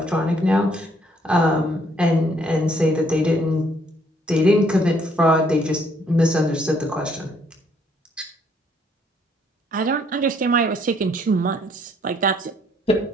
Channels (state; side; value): normal; both; correlation 0.66